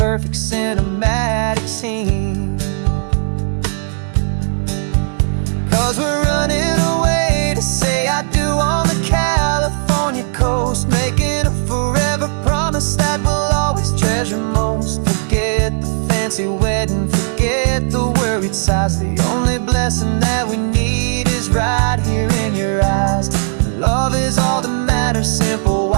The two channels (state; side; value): silent; left; digital silence